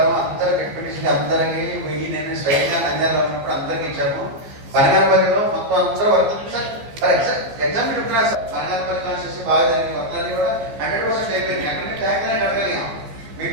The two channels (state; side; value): late; left; 15 ms